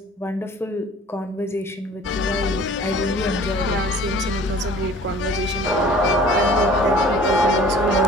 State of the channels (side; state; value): both; normal; correlation 0.49